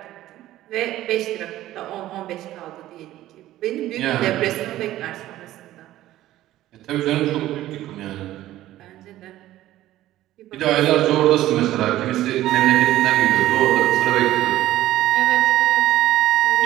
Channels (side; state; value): left; quieter; 14.6 dB